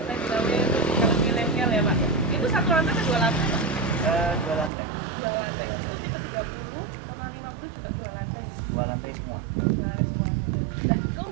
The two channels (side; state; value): left; drops out; at 4.7 s